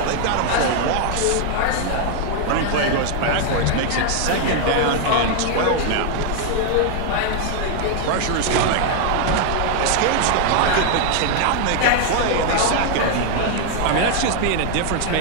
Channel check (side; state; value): both; different; correlation 0.00